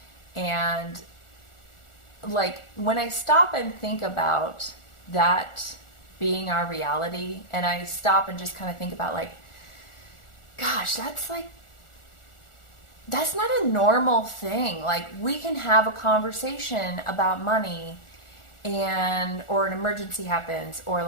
And like when I stop and think about that being our reality, and I stop and just kind of think about like, gosh, that's not a normal thing. Like we can have a conversation about money or an emergency happens, or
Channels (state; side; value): late; right; 1.4 ms